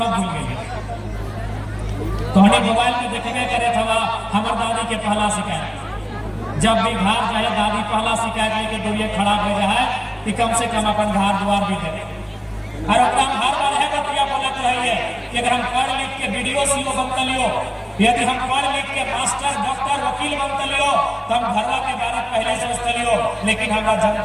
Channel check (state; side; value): identical; both; correlation 1.00